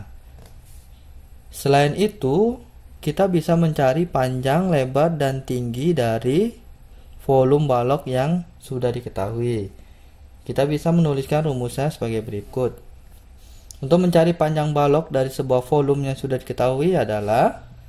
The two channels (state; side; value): identical; both; correlation 1.00